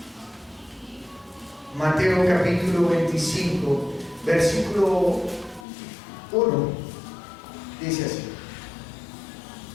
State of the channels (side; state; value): right; drops out; at 5.7 s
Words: Mateo capítulo 25, versículo 1, dice así: